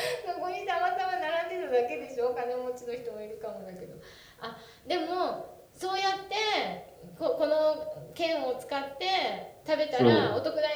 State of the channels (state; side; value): identical; both; correlation 1.00